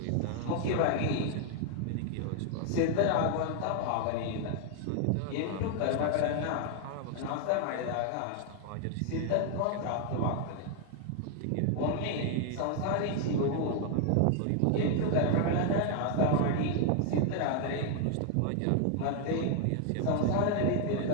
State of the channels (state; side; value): different; both; correlation 0.00